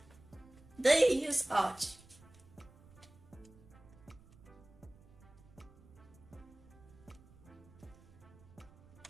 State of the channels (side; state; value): right; noise; rumble, 23 dB below the sound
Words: Do you use Arch?